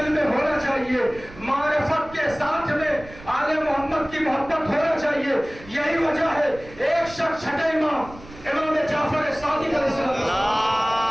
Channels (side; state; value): right; noise; rumble, 19 dB below the sound